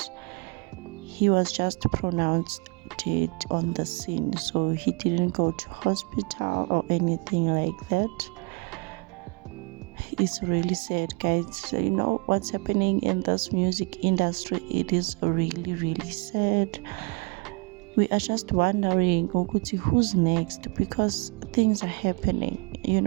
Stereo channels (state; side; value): quieter; left; 30.3 dB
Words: he was just pronounced dead on the scene. So he didn't go to hospital or anything like that. It's really sad, guys. So, you know what's happening in this music industry, it is really sad. We are just wondering, Okuti, who's next? Because things are happening,